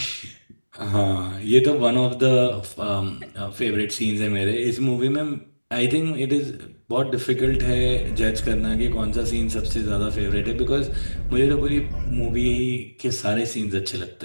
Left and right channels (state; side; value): inverted; both; correlation -1.00